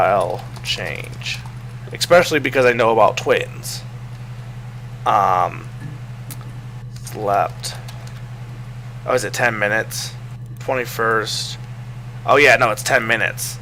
change. Especially because I know about twins. Slept. Oh, is it 10 minutes? 21st. Oh yeah, no, it's 10 minutes.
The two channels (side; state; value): both; identical; correlation 1.00